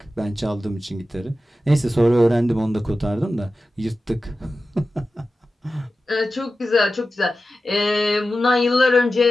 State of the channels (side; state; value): both; normal; correlation 0.93